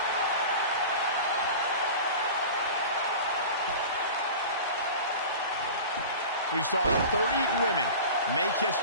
We saw 30 women make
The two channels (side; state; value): both; inverted; correlation -0.35